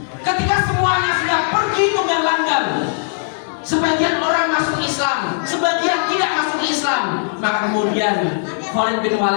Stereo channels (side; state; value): right; silent; 62 dB below the other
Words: ketika semuanya sudah pergi tunggang-langgang, sebagian orang masuk Islam, sebagian tidak masuk Islam, maka kemudian Khalid bin